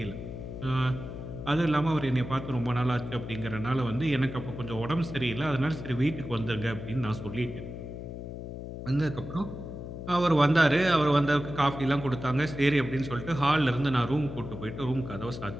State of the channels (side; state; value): left; noise; hum, 9 dB below the sound